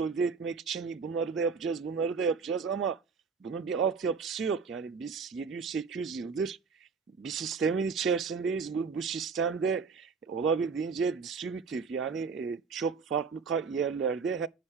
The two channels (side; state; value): left; quieter; 5.3 dB